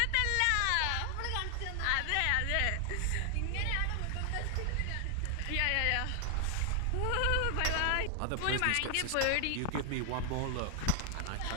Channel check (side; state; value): both; different; correlation 0.00